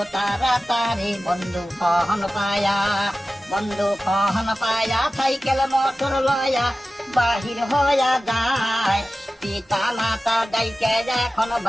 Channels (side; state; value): both; normal; correlation 0.95